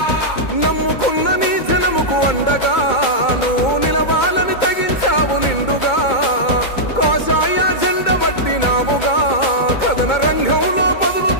నమ్ముకున్న నీ జనముకు అండగా నువ్వు నిలవాలని తెగించావు నిండుగా కాషాయ జెండ పట్టినావుగా కథన రంగంలో బదులు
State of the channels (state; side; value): late; right; 2.2 ms